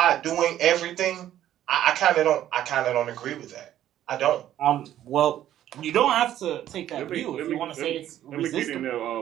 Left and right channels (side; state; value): left; quieter; 12.1 dB